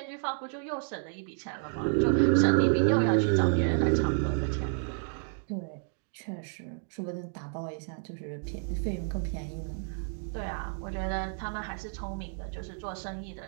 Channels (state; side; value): silent; left; 57 dB below the other